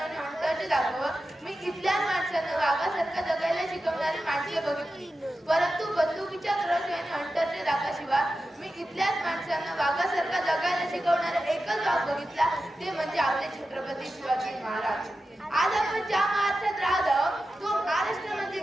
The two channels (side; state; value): both; normal; correlation 0.92